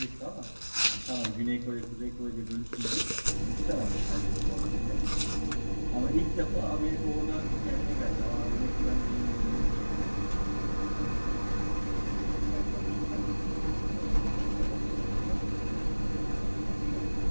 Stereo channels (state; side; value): inverted; both; correlation -1.00